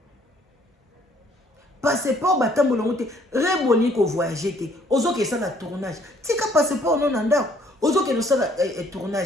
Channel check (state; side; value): normal; both; correlation 0.62